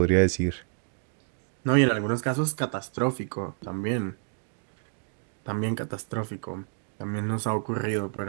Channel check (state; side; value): silent; left; 59 dB below the other